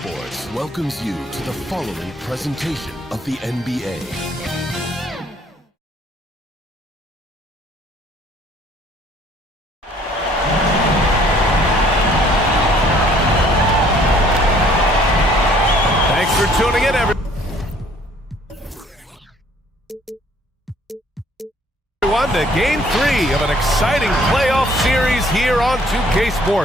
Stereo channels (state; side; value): normal; both; correlation 0.59